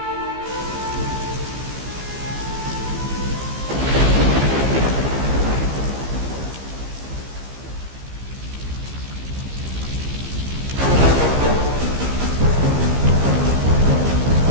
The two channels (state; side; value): late; left; 15 ms